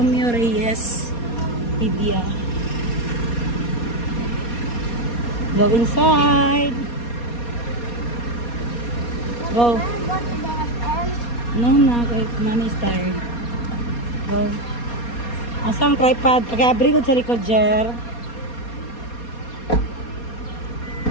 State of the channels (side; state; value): right; late; 4.2 ms